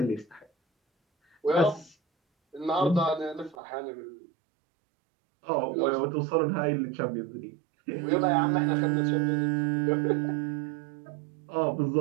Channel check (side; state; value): left; drops out; at 3.6 s